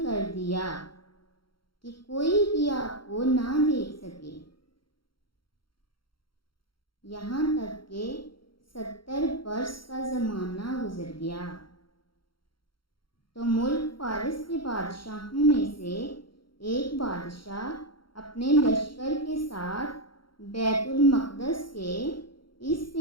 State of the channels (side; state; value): right; late; 0.73 ms